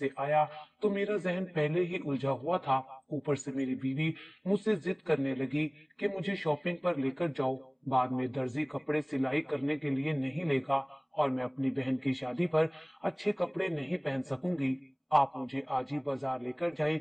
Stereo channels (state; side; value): identical; both; correlation 1.00